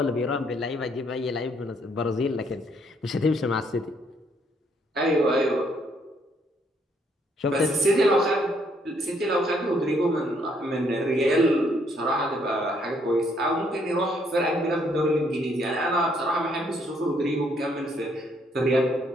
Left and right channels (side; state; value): both; normal; correlation 0.69